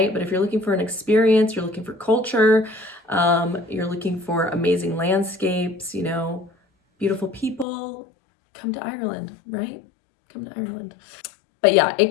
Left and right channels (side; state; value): right; drops out; at 7.7 s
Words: But if you're looking for an experience, you're looking for culture, you're looking for amazing landscapes, beautiful people, come to Ireland, right? Come to Ireland. But yeah,